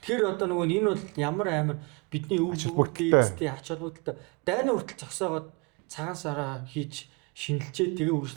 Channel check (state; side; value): quieter; left; 29.3 dB